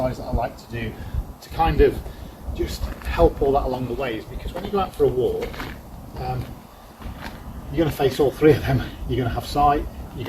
that I like to do to kind of just help all that along the way is, because when you go out for a walk, you're going to face all three of them. You're going to have sight, you're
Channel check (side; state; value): both; identical; correlation 1.00